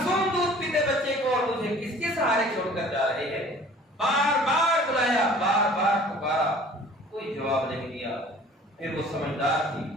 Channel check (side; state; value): both; normal; correlation 0.49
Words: دودھ پیتے بچے کو اور مجھے کس کے سہارے چھوڑ کر جا رہے ہیں؟ بار بار بلایا، بار بار پکارا، کوئی جواب نہیں دیا۔ پھر وہ سمجھدار تھی،